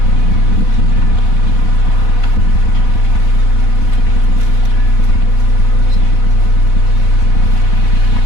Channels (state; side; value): late; right; 4.1 ms